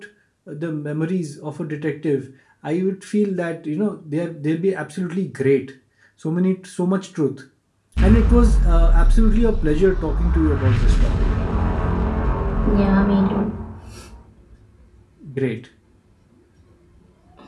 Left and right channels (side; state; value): both; identical; correlation 1.00